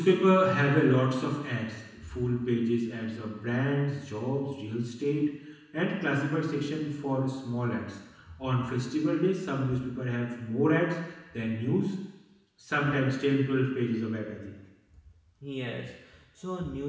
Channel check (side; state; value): both; identical; correlation 1.00